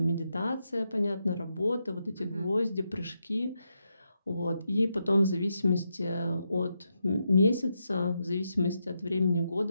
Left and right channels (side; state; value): both; inverted; correlation -0.83